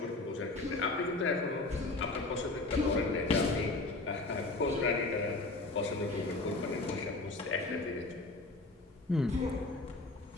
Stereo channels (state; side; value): quieter; right; 3.1 dB